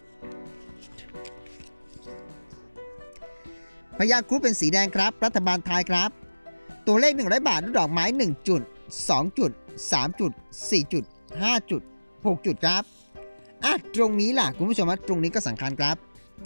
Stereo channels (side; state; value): both; inverted; correlation -1.00